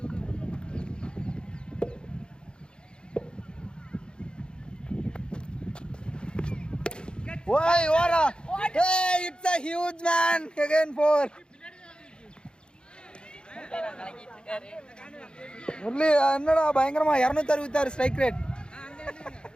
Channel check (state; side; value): late; right; 0.051 ms